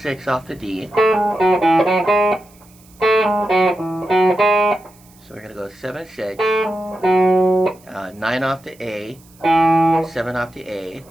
6 off the D. So we're going to go 7, 6, 9 off the A, 7 off the A,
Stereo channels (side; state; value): right; noise; hiss, 28 dB below the sound